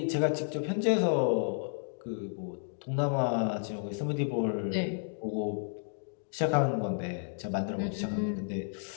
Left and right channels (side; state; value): right; silent; digital silence